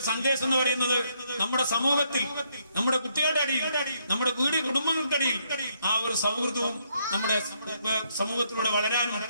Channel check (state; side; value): inverted; both; correlation -0.73